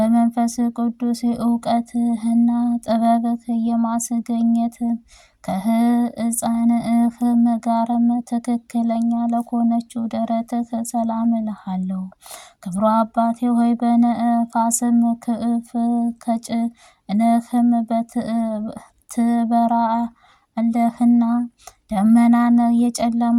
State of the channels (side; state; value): both; identical; correlation 1.00